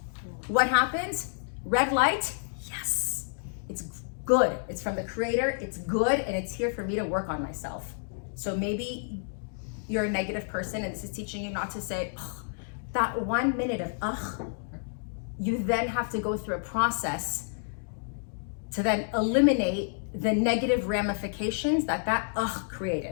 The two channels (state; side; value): silent; right; digital silence